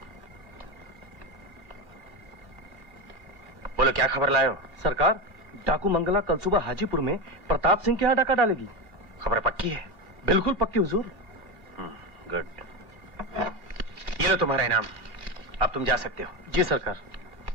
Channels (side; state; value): left; late; 2.4 ms